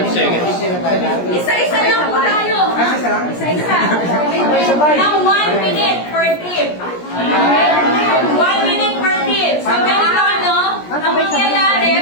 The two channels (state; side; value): late; right; 17 ms